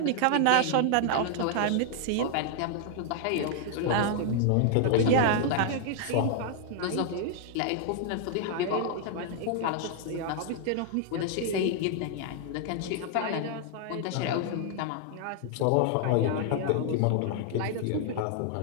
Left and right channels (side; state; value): both; different; correlation 0.00